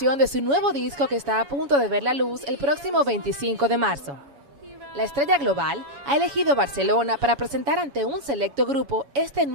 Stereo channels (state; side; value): late; left; 7.1 ms